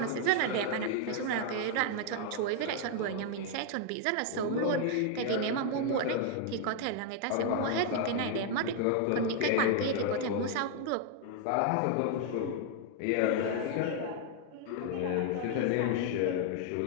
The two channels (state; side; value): different; both; correlation 0.00